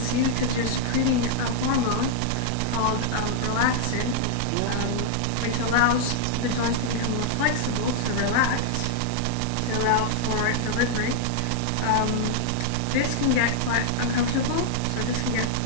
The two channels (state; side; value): different; both; correlation -0.01